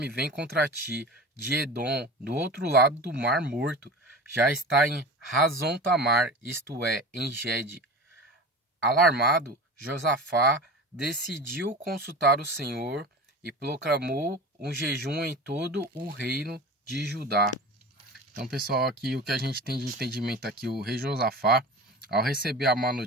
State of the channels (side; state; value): both; normal; correlation 0.34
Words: vem contra ti, de Edom, do outro lado do Mar Morto. Já está em Hazon Tamar, isto é, em Gede. Alarmado, Josafá decidiu consultar o Senhor e proclamou um jejum em todo o reino de Judá. Então, pessoal, aqui o que a gente tem de entendimento aqui, o rei Josafá, ao receber a má